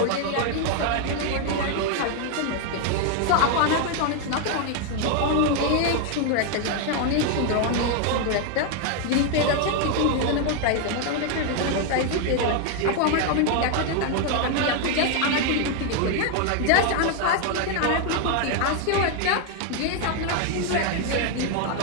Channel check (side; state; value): both; different; correlation 0.01